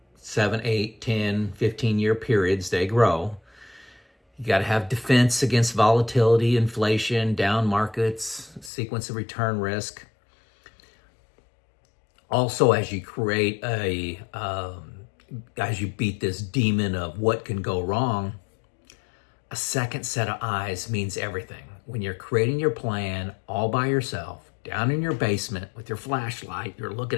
7, 8, 10, 15-year periods, they grow. You got to have defense against volatility, inflation, down markets, sequence of return risk. Also, as you create a as you beat this demon of what can go wrong, a second set of eyes means everything. When you're creating your plan all by yourself, down in your basement with your flashlight, you're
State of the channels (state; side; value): drops out; right; at 8.7 s